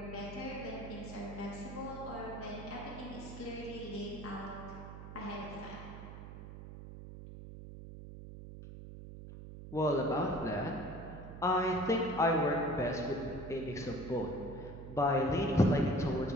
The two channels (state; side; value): noise; right; hum, 12 dB below the sound